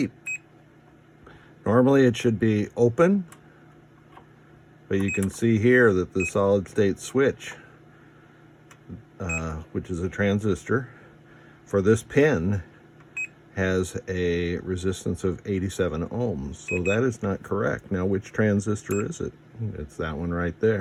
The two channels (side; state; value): both; identical; correlation 1.00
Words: Normally it should be open, but you can see here that the solid state switch, which is a transistor, for this pin has a resistance of 87 ohms. So that is not correct. Now, which transistor is it? It's that one right